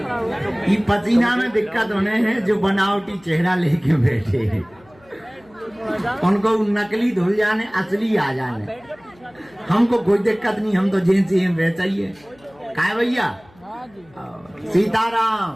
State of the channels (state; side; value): noise; left; hum, 28 dB below the sound